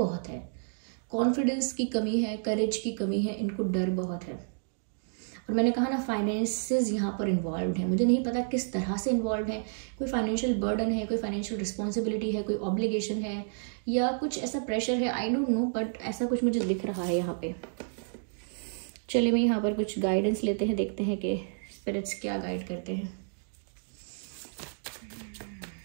है, कॉन्फिडेंस की कमी है, करेज की कमी है, इनको डर बहुत है। और मैंने कहा ना, फाइनेंसेस यहाँ पर इन्वॉल्व है, मुझे नहीं पता किस तरह से इन्वॉल्व है, कोई फाइनेंशियल बर्डन है, कोई फाइनेंशियल रिस्पॉन्सिबिलिटी है, कोई ऑब्लिगेशन है, या कुछ ऐसा प्रेशर है, आई डोंट नो, बट ऐसा कुछ मुझे दिख रहा है यहाँ पे। चलिए मैं यहाँ पर कुछ गाइडेंस लेते हैं, देखते हैं कि स्पिरिट्स क्या गाइड करते हैं।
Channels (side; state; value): left; silent; digital silence